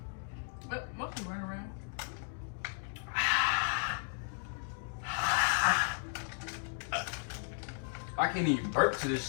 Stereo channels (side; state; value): right; silent; 54 dB below the other